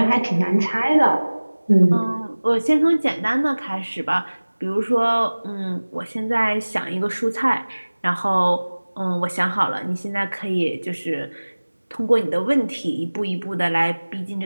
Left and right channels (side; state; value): both; inverted; correlation -1.00